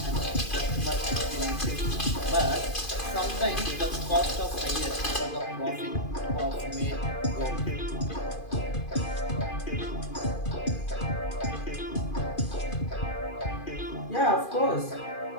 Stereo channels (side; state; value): right; late; 2.5 ms